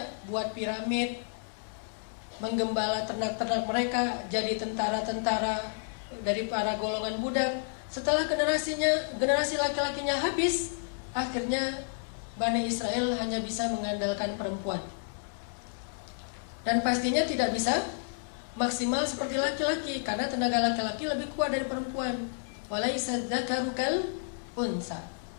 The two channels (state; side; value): silent; right; digital silence